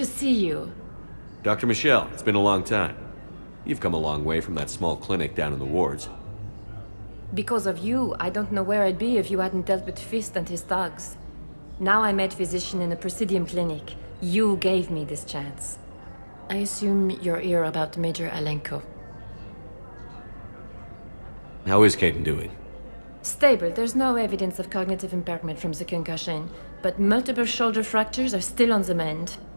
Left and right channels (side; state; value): both; inverted; correlation -1.00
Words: see you. Dr. Michel, it's been a long time. You've come a long way from that small clinic down in the wards. Because of you, I don't know where I'd be if you hadn't dealt with Fist and his thugs. Now I'm head physician in a Presidium clinic. You gave me this chance. I assume you're here about Major Alenko. How is Kaidan doing? Stable. There's no evidence of cognitive impairment from the concussion, but multiple shoulder fractures are still on the mend.